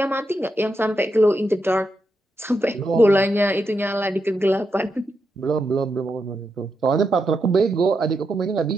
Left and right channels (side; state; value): both; normal; correlation 0.84